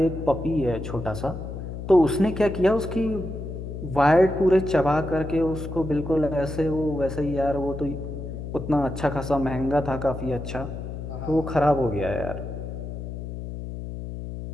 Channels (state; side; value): noise; left; hum, 8 dB below the sound